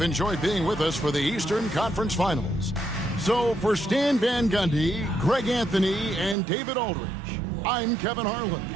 enjoyed being with us for the Eastern Conference Finals. So for Stan Van Gundy, Greg Anthony, and David Aldridge, I'm Kevin Harlan.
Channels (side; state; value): left; drops out; at 6.4 s